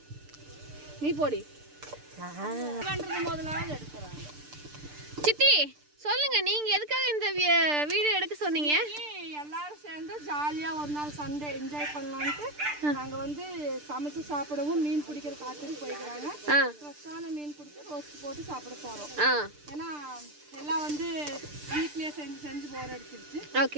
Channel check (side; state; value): left; late; 6.7 ms